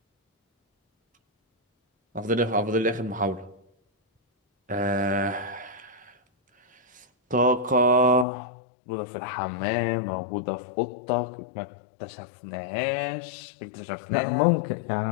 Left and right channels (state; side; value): drops out; right; at 8.2 s